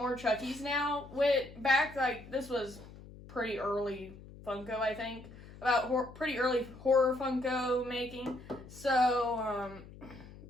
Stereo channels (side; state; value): left; noise; hum, 18 dB below the sound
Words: Chuckies now. This was pretty early Funko, I think. Pretty early horror Funko making. So,